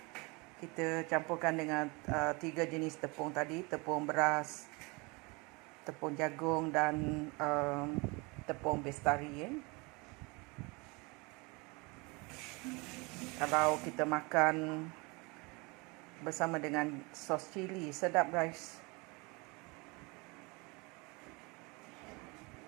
Kita campurkan dengan 3 jenis tepung tadi, tepung beras, tepung jagung dan tepung bestari. Kalau kita makan bersama dengan sos cili, sedap guys.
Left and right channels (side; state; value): left; quieter; 27.5 dB